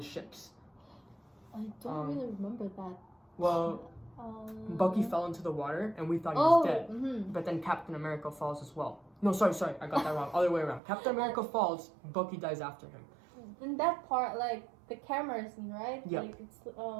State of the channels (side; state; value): left; drops out; at 10.8 s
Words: ships. I don't really remember that. Well, Bucky fell into the water, and we thought he was dead. But then Captain America falls as well. No, sorry, I got that wrong. Other way around. Captain America falls, Bucky dies after him. In that part, the camera scene, right? Yeah. It's